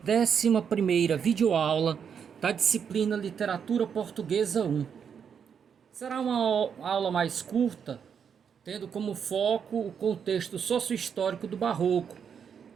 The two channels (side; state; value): left; quieter; 7.3 dB